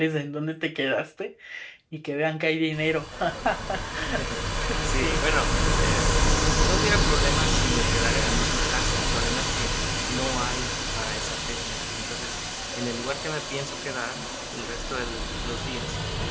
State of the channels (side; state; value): both; identical; correlation 1.00